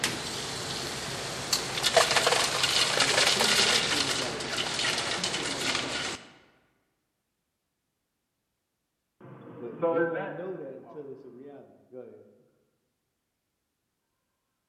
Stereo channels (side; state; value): both; identical; correlation 1.00